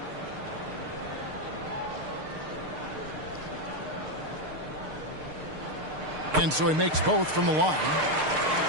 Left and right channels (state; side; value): late; left; 6.6 ms